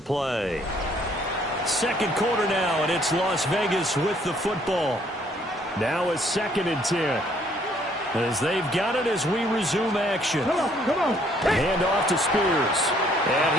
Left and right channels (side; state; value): both; normal; correlation 0.64